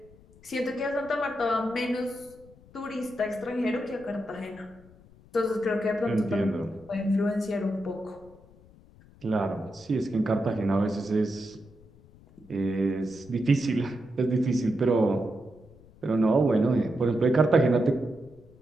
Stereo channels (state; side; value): noise; left; rumble, 25 dB below the sound